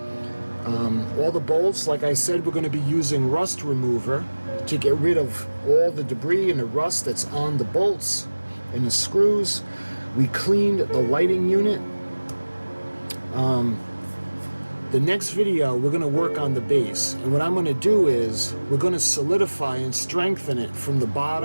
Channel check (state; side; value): inverted; both; correlation -1.00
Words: All the bolts, like I said, we're going to be using rust remover to get rid of all the debris and the rust that's on the bolts and the screws. We cleaned the lighting unit. The next video we're going to work on the base, and what I'm going to do is we're going to solidify and strengthen it from the